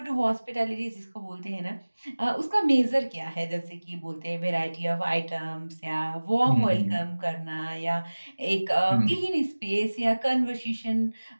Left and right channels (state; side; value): inverted; both; correlation -1.00